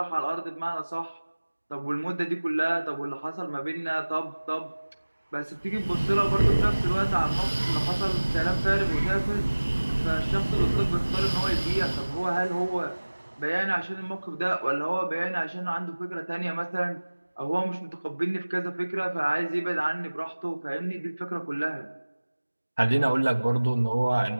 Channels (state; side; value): inverted; both; correlation -1.00